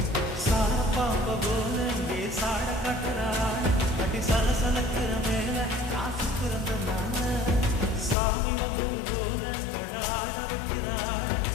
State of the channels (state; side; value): drops out; right; at 8.2 s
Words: பாம்ப போல சாட கட்டுறான் கட்டி சலசலக்கிற மேல காசு பிறந்தனால சாமி வந்தது போல ஆட வைக்கிறான்